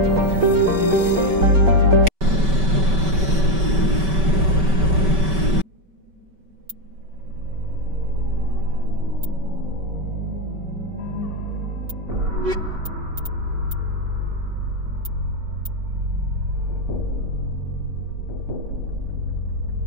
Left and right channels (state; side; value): late; left; 5.2 ms